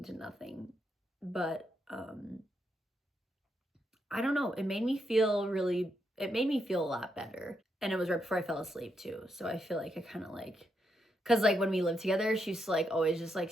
to nothing, but I don't know, it made me feel a lot better. And it was right before I fell asleep too, so I feel like I kind of like, because like when we lived together, she used to like always just like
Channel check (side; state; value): both; normal; correlation 0.81